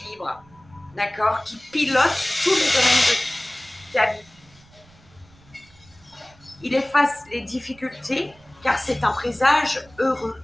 d'accord? Qui pilote tous les domaines de ta vie. Il efface les difficultés car c'est un présage heureux.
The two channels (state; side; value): noise; right; rumble, 28 dB below the sound